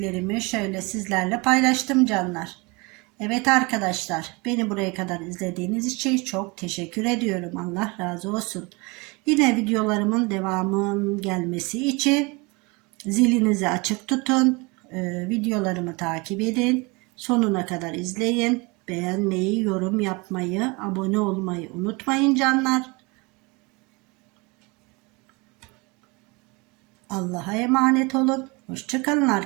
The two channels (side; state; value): left; quieter; 27.2 dB